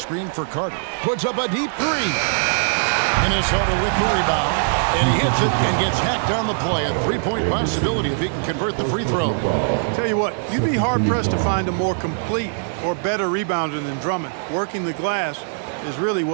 for Carter. Puts up a deep three. Minnesota with the rebound. And he hits it and gets hacked on the play. A three-point possibility if he can convert the free throw. Tell you what, you'd be hard-pressed to find a more complete or better rebounder than Drummond. Working the glass is really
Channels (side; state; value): left; silent; digital silence